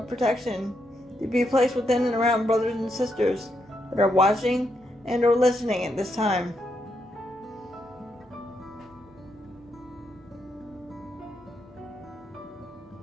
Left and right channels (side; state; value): both; normal; correlation 0.80